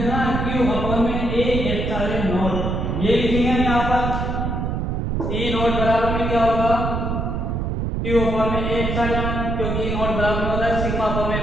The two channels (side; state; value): right; noise; rumble, 1 dB below the sound